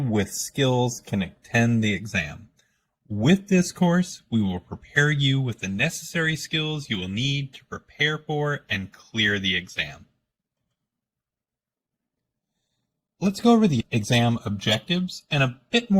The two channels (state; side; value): identical; both; correlation 1.00